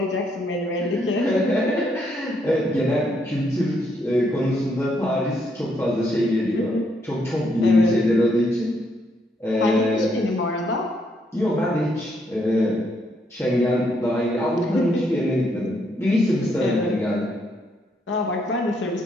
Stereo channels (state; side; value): normal; both; correlation 0.74